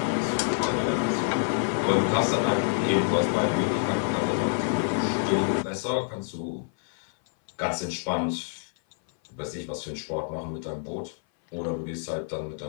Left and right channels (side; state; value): right; silent; 57 dB below the other